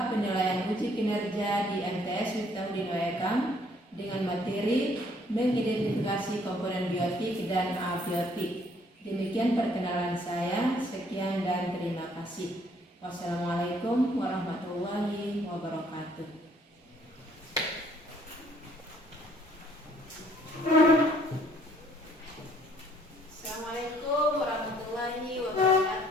penilaian uji kinerja di MTS Miftahudin Waekam dengan materi mengidentifikasi komponen biotik dan abiotik. Demikian perkenalan saya. Sekian dan terima kasih. Wassalamualaikum warahmatullahi wabarakatuh. Assalamualaikum warahmatullahi wabarakatuh.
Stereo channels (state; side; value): normal; both; correlation 0.63